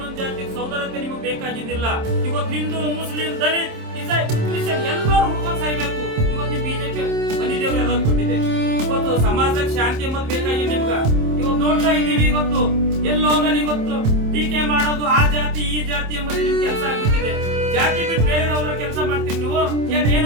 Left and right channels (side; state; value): left; late; 27 ms